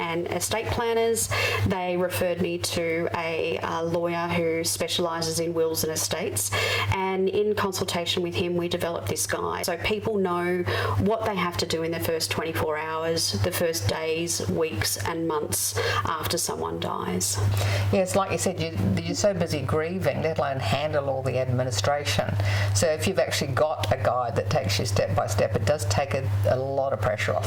Estate Planners. They referred me to a lawyer who specialises in wills and estates, and in consultation with him we developed this guide so people know what they have to do in the first 24 hours, the first days, weeks and months after someone dies. Yes, like you said, you're so busy grieving, let alone handle all the administration. So if you've actually got a guide that takes you step by step, it does take a lot of pressure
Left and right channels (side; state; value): both; identical; correlation 1.00